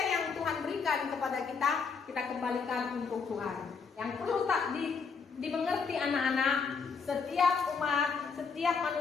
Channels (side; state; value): right; quieter; 5.3 dB